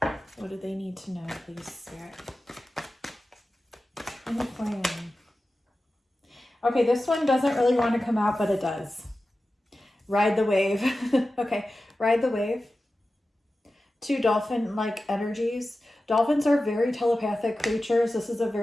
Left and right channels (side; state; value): both; normal; correlation 0.94